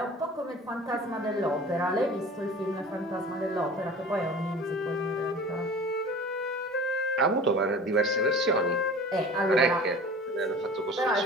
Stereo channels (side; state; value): both; normal; correlation 0.40